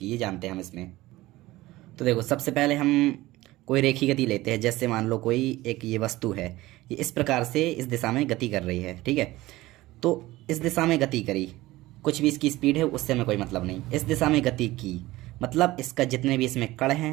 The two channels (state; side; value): quieter; left; 18.1 dB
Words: ये जानते हैं हम इसमें। तो देखो, सबसे पहले हम कोई रेखी गति लेते हैं। जैसे मान लो कोई एक ये वस्तु है, ये इस प्रकार से इस दिशा में गति कर रही है, ठीक है। तो इस दिशा में गति करी, कुछ भी इसकी स्पीड है उससे हमें कोई मतलब नहीं। इस दिशा में गति की मतलब इसका जितने भी इसमें कण